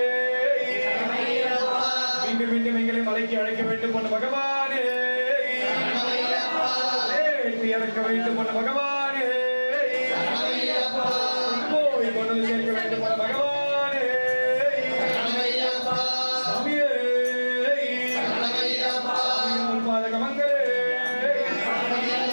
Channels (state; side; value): inverted; both; correlation -1.00